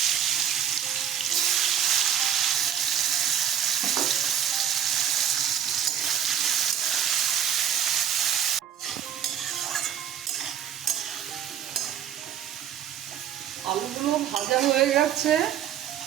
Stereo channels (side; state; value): left; quieter; 9.6 dB